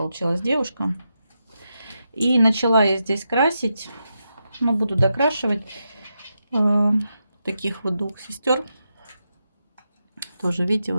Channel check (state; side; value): inverted; both; correlation -0.86